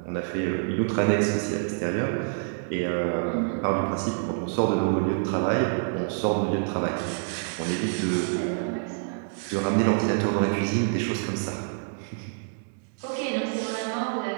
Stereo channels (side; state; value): left; silent; digital silence